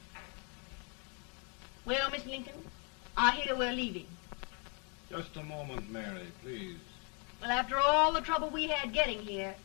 Well, Miss Lincoln, I hear we're leaving. Just a moment, Mary, please. Well, after all the trouble we had getting here,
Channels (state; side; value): quieter; right; 36.4 dB